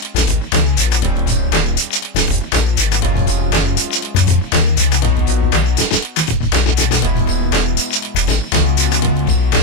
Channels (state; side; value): late; right; 25 ms